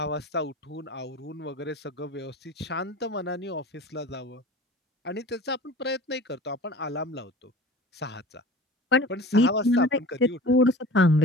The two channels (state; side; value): normal; both; correlation 0.40